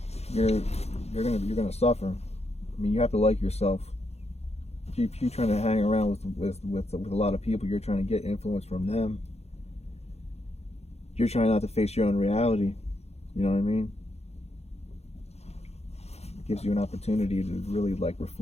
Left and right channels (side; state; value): right; late; 0.31 ms